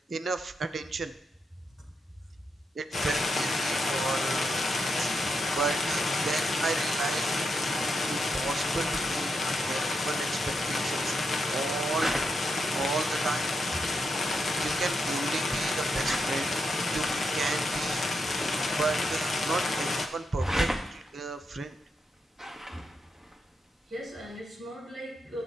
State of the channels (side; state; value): both; normal; correlation 0.83